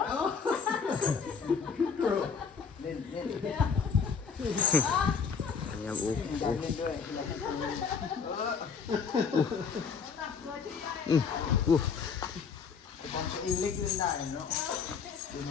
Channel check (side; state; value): right; quieter; 5.9 dB